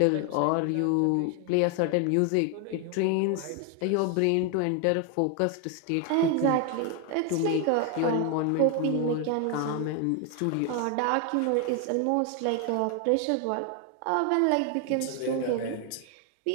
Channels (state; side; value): different; both; correlation 0.01